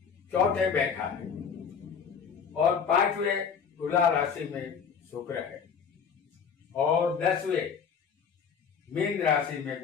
चौथे बैठा है और 5वें तुला राशि में शुक्र है और 10वें मीन राशि में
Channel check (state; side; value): quieter; right; 6.6 dB